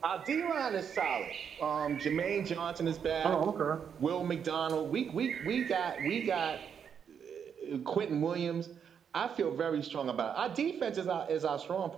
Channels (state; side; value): quieter; left; 7.5 dB